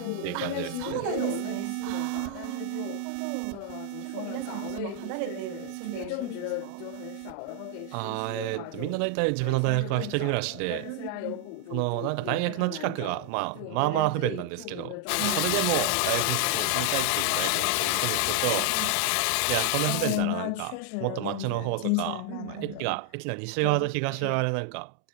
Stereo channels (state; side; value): different; both; correlation 0.00